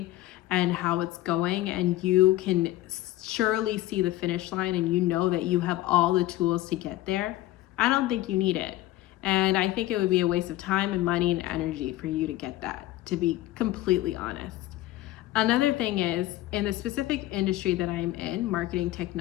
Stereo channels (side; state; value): right; quieter; 16.0 dB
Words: and how it's going, and you can surely see the finish line and you know that you have all the tools to get there, I don't think you need it. And I think it would be a waste of time and money and energy for you to get that, to be completely honest. Another thing is, in the specific industry that I'm in, marketing